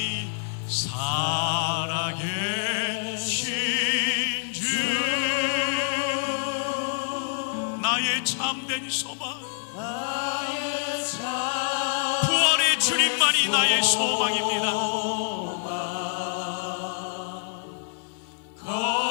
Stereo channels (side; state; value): right; silent; digital silence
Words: 살아계신 주 나의 참된 소망 부활의 주님만이 나의 소망입니다.